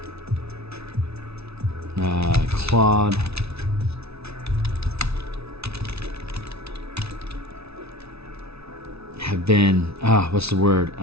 clawed, have been have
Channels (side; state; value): left; late; 0.79 ms